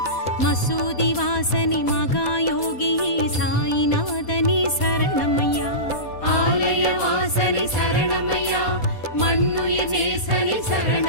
மசூதி வாசனி மகாயோகியே சாயிநாதனே சரணமையா ஆலய வாசனி சரணமையா மண்ணுயிர் நேசனே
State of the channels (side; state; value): right; late; 4.2 ms